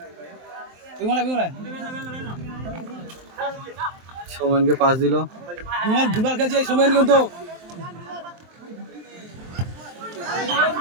বিমলা সোমেনকে পাস দিল বিমল দুবার খেলছে এই সময় কিন্তু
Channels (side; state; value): left; late; 23 ms